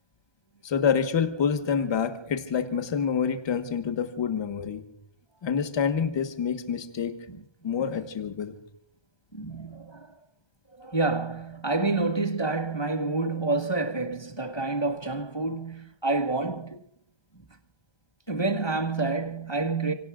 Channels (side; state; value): right; late; 1.2 ms